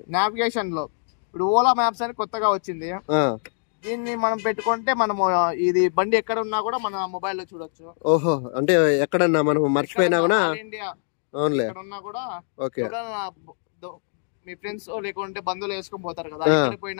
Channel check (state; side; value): silent; right; digital silence